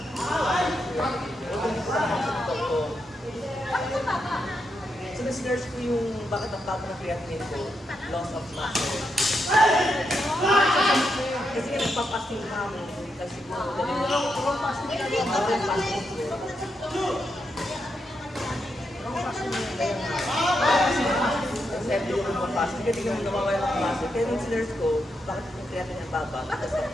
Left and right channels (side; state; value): both; normal; correlation 0.83